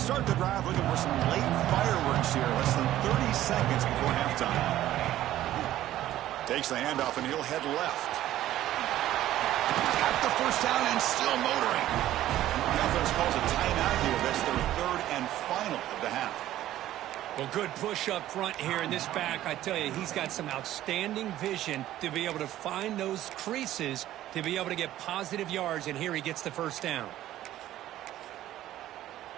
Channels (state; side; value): quieter; left; 13.6 dB